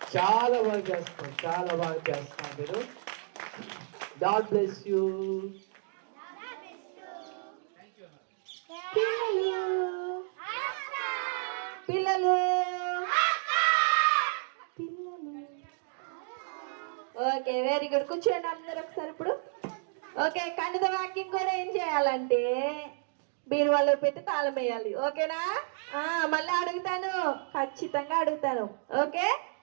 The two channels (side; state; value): left; silent; digital silence